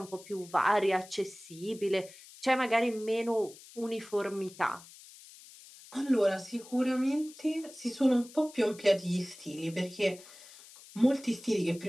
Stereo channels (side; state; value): left; noise; hiss, 20 dB below the sound